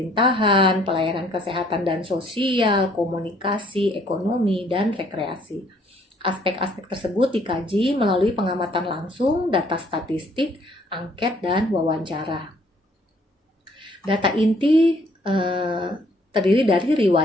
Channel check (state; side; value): normal; both; correlation 0.63